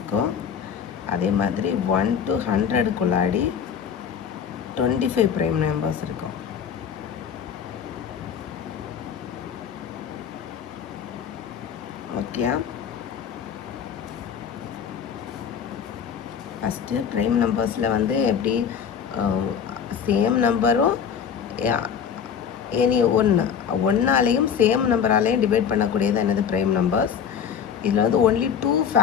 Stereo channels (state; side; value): quieter; right; 7.6 dB